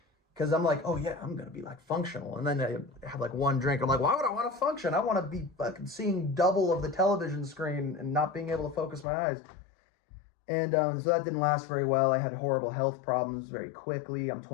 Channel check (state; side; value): drops out; right; at 9.1 s